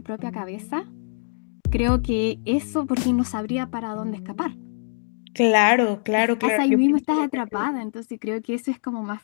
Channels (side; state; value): right; silent; digital silence